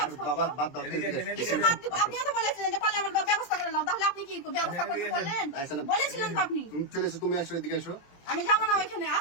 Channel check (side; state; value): right; late; 23 ms